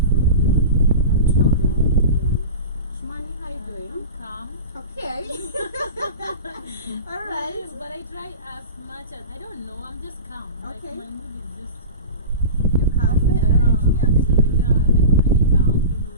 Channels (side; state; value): both; inverted; correlation -0.31